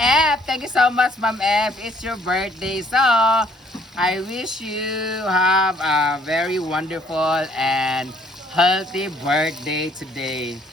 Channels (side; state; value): both; normal; correlation 0.63